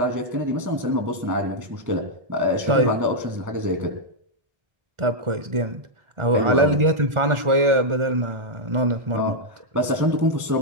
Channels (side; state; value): left; late; 1.4 ms